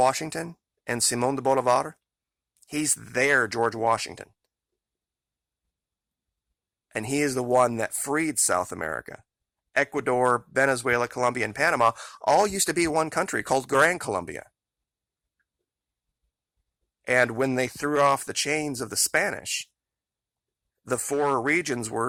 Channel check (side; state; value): both; identical; correlation 1.00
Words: and Simón de Bolivar, he's their George Washington. And he is the one that freed South America. Ecuador, Venezuela, Colombia, and Panama all used to be one country called Gran Colombia. And when they threw off the chains of the Spanish, the 4 regions